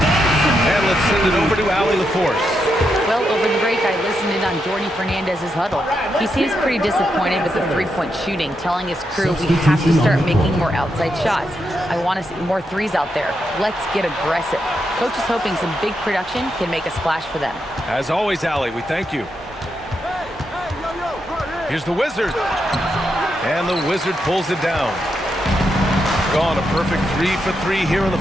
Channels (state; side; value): normal; both; correlation 0.83